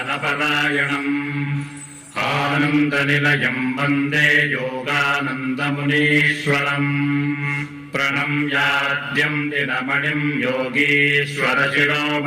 आनन्दनिलयं वन्दे योगानन्दमुनीश्वरम् प्रणम्याद्यं दिनमणिं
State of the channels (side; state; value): both; identical; correlation 1.00